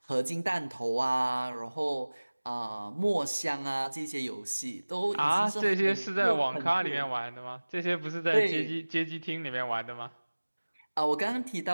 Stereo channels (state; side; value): inverted; both; correlation -1.00